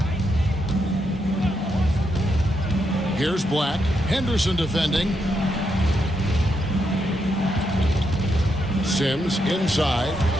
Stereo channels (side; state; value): both; normal; correlation 0.81